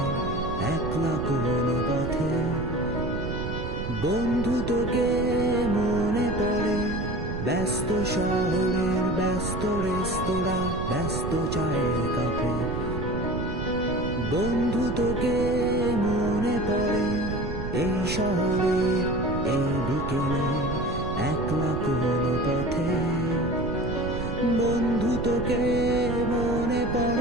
একলা কোনো পথে। বন্ধু তোকে মনে পড়ে ব্যস্ত শহরের ব্যস্ত রেস্তোরাঁ ব্যস্ত চায়ের কাপে। বন্ধু তোকে মনে পড়ে এই শহরের এই বিকেলে একলা কোনো পথে। বন্ধু তোকে মনে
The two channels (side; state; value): right; noise; rumble, 6 dB below the sound